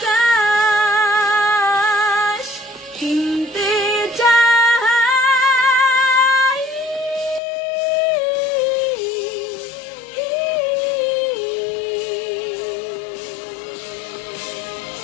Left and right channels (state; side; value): drops out; right; at 7.4 s